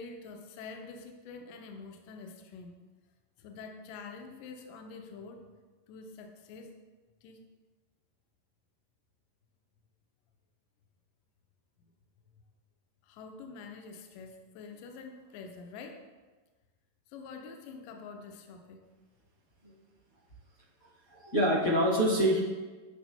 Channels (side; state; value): right; late; 11 ms